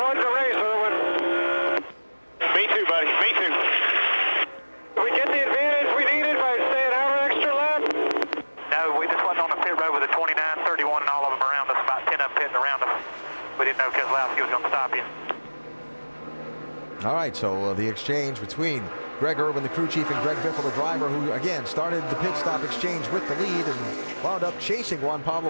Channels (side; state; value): both; inverted; correlation -1.00